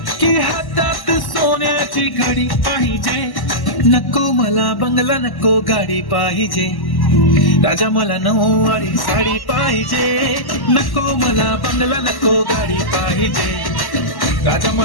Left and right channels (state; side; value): late; right; 1.1 ms